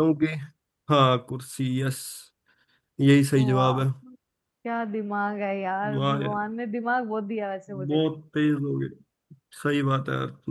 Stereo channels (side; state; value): both; identical; correlation 1.00